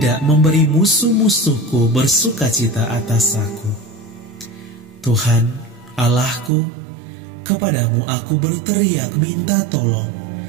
memberi musuh-musuhku bersukacita atas aku. Tuhan, Allahku, kepadamu aku berteriak minta tolong,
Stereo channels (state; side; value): drops out; left; at 6.5 s